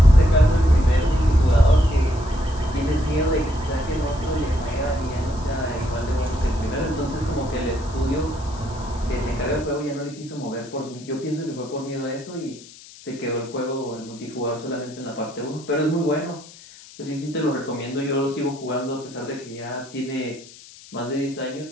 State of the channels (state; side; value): noise; left; hiss, 20 dB below the sound